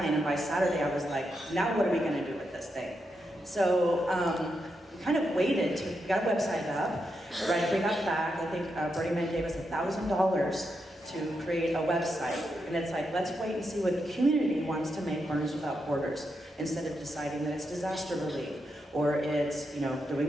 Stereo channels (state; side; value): normal; both; correlation 0.84